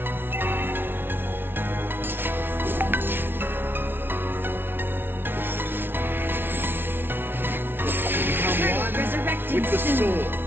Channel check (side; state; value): left; late; 0.11 ms